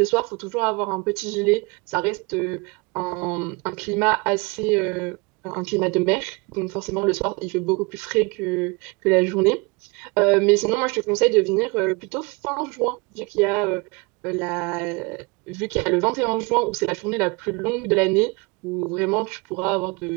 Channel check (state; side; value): quieter; left; 28.3 dB